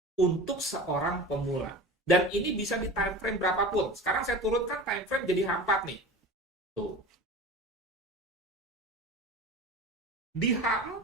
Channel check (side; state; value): both; normal; correlation 0.34